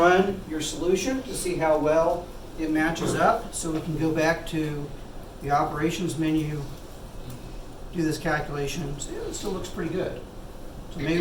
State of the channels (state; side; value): identical; both; correlation 1.00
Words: your solution to see how well it matches up. So we can go back to the operations menu, do this calculation, and say, oh, it still looks pretty good. So